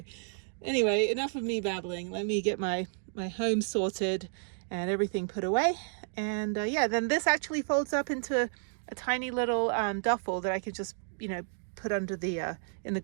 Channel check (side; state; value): left; silent; digital silence